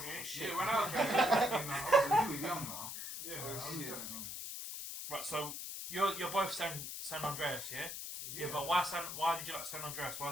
Yeah, when I was playing, I You were young now. yeah, Oh, I was shit. Right, so you're both San Andreas, yeah? Yeah, but why did you like San Andreas? Why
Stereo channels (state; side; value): noise; left; hiss, 6 dB below the sound